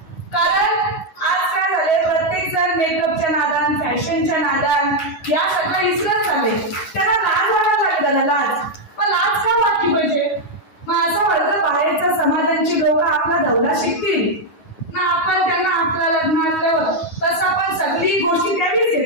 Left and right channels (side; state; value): right; late; 9.4 ms